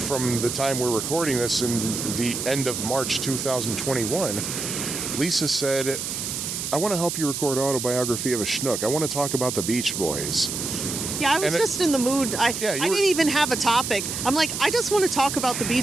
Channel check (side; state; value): right; noise; hiss, 4 dB below the sound